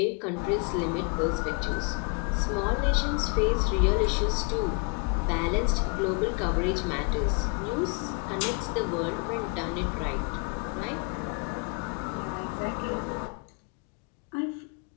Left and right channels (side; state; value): right; quieter; 36.4 dB